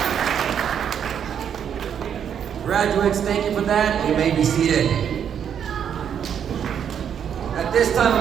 Graduates, thank you for that. You may be seated. At this time,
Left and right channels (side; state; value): left; quieter; 8.4 dB